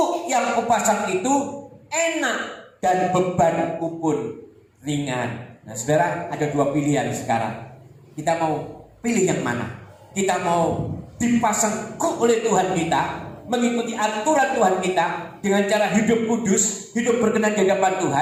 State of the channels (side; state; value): both; identical; correlation 1.00